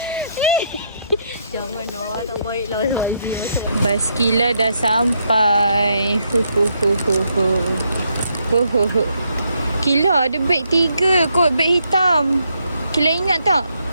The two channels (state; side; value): inverted; both; correlation -0.76